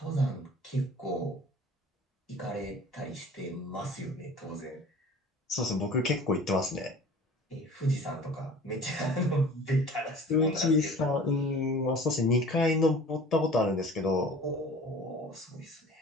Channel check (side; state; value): both; normal; correlation 0.44